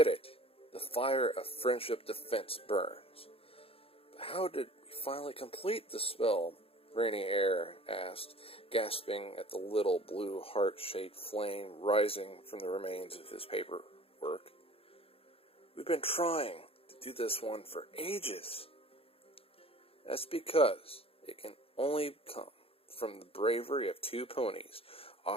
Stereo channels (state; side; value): late; right; 0.27 ms